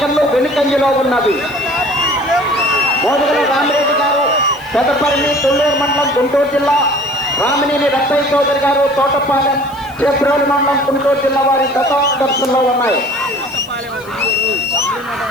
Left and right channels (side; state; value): left; noise; hiss, 24 dB below the sound